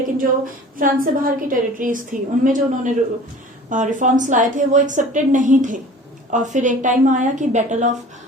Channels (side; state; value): both; normal; correlation 0.44